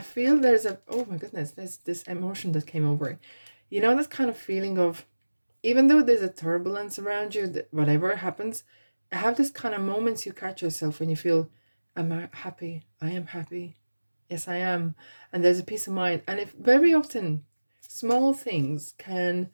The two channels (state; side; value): inverted; both; correlation -1.00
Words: feel there's a, oh my goodness, there's this emotion that came over. You know, that kind of feeling of, even though there's a turbulence around you, whatever happens, I have this kind of moments you catch yourself when you feel, am I happy? I am happy. Yes, I am. And there's a peace of mind. And if very often small things can